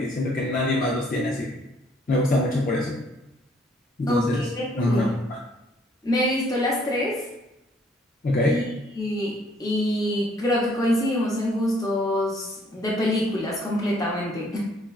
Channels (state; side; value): normal; both; correlation 0.64